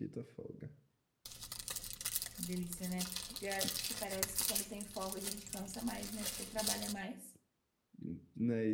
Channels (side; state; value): both; identical; correlation 1.00